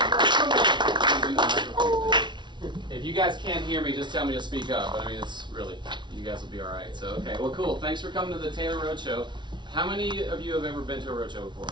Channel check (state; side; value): late; left; 0.23 ms